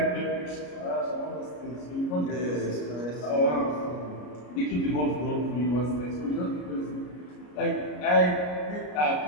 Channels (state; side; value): late; right; 33 ms